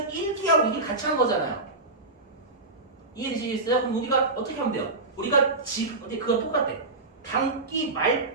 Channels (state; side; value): quieter; left; 3.1 dB